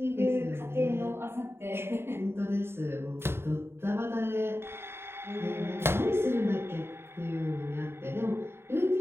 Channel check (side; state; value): left; late; 0.11 ms